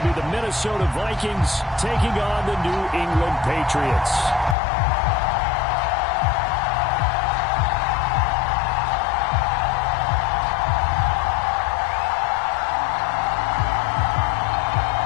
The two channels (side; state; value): right; drops out; at 4.5 s